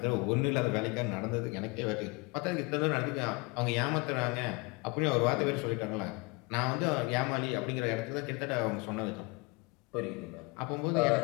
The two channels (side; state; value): right; quieter; 27.1 dB